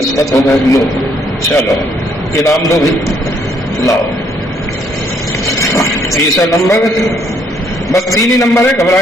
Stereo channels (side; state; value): both; normal; correlation 0.68